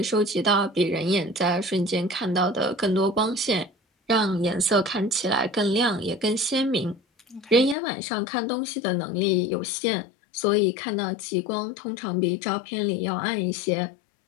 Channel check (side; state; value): right; drops out; at 7.8 s